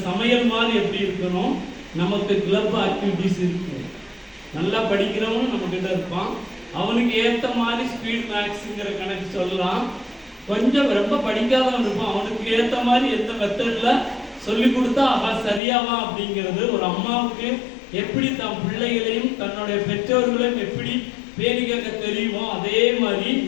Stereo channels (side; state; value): right; drops out; at 15.6 s